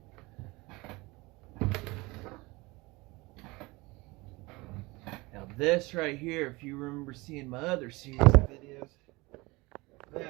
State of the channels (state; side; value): quieter; left; 23.3 dB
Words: Now this right here, if you remember seeing my other series of videos,